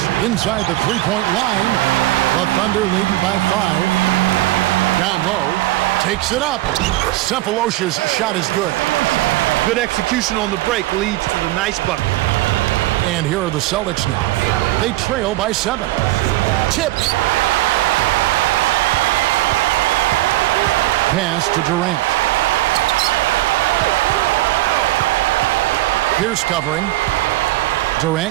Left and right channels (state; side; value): quieter; left; 17.8 dB